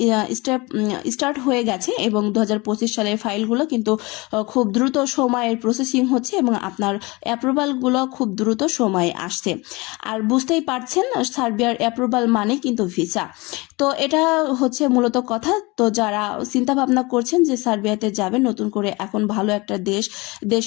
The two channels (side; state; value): right; quieter; 24.5 dB